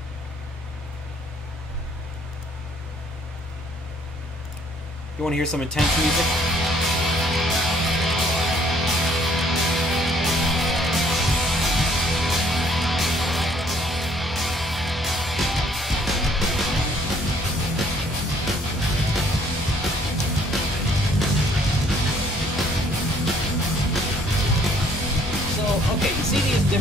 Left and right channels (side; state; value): both; normal; correlation 0.62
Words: You want to hear some intense music? Okay, you see these